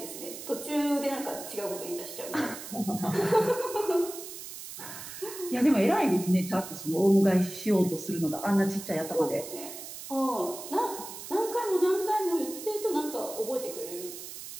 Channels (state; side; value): noise; right; hiss, 11 dB below the sound